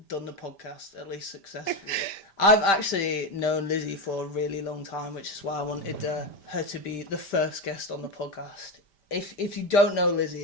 done the podcast, at least successfully. I've actually known Lizzie for a really long time, which is why I wanted her to be the first guest on the podcast. If you don't know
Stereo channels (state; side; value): late; right; 5.1 ms